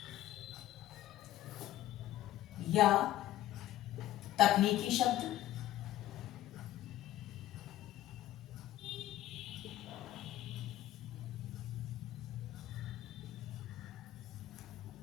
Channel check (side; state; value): right; quieter; 13.9 dB